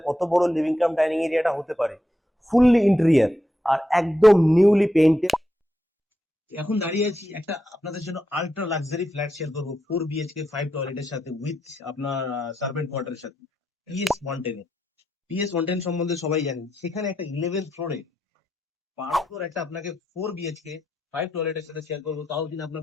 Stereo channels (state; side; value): normal; both; correlation 0.84